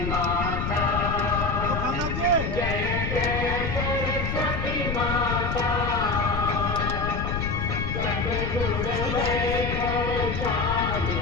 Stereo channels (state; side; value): noise; left; rumble, 2 dB below the sound